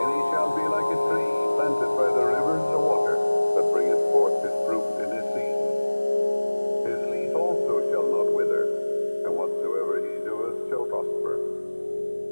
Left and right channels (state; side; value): inverted; both; correlation -1.00